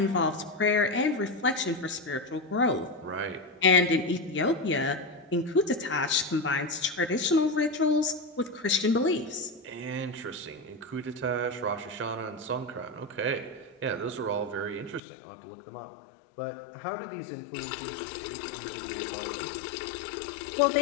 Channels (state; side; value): drops out; right; at 15.0 s